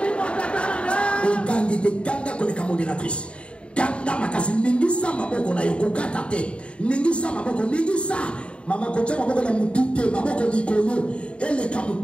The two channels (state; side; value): late; right; 0.058 ms